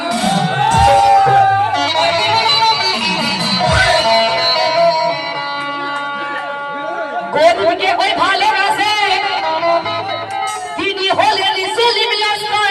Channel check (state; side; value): identical; both; correlation 1.00